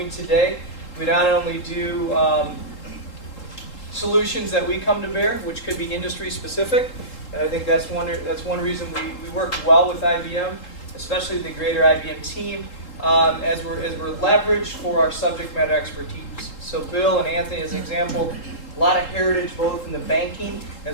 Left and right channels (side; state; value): right; late; 3.8 ms